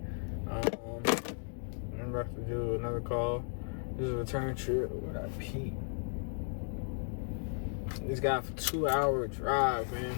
I'm about to do another call. This is a return trip. Where'd I pee? This guy for 2-hour drive,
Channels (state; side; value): silent; right; 54 dB below the other